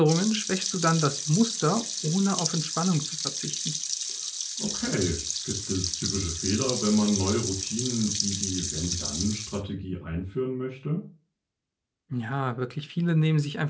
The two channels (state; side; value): identical; both; correlation 1.00